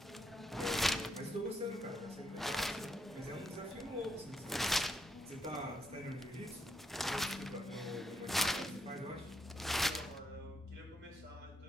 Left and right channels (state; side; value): normal; both; correlation 0.78